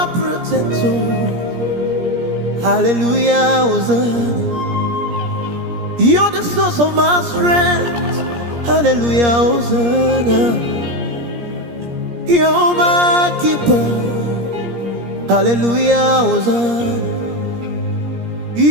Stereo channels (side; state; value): left; late; 17 ms